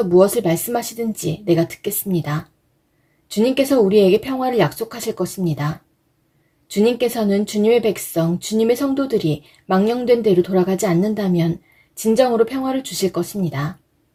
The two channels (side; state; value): both; identical; correlation 1.00